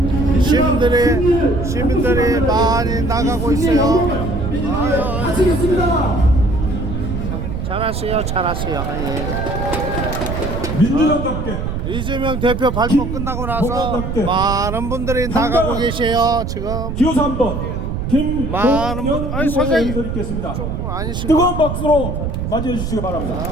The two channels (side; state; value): right; noise; rumble, 3 dB below the sound